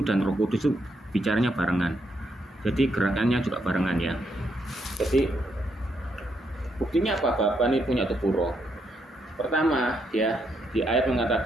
dan Roh Kudus itu bicaranya barengan. Jadi gerakannya juga barengan ya. Jadi buktinya apa? Bapa ini punya tubuh roh. Pertama ya, di ayat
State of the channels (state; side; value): normal; both; correlation 0.77